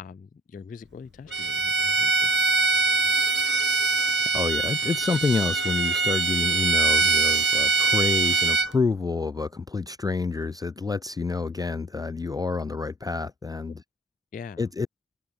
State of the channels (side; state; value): both; normal; correlation 0.49